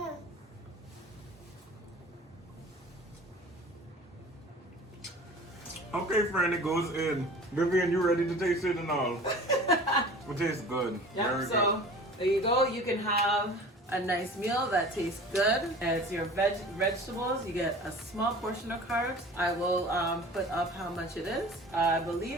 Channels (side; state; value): both; normal; correlation 0.41